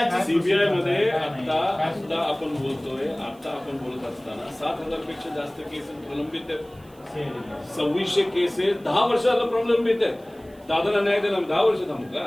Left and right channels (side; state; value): right; noise; hiss, 29 dB below the sound